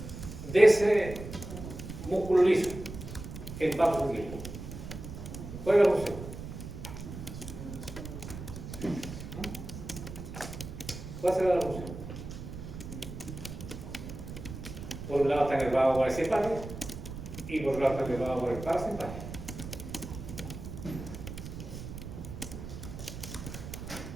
de ese músculo liso en vasos sanguíneos? ¿Cuál es la función? ¿Cuál será la función? Por un lado está nervado por el simpático y por otro lado está nervado por el parasimpático.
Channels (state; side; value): noise; right; rumble, 9 dB below the sound